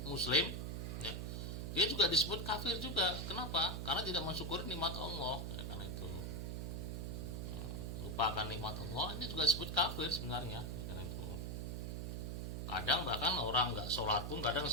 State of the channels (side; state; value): right; noise; hum, 4 dB below the sound